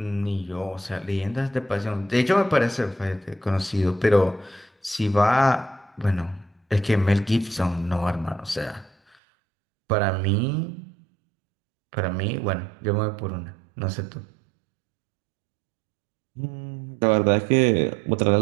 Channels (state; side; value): drops out; left; at 9.2 s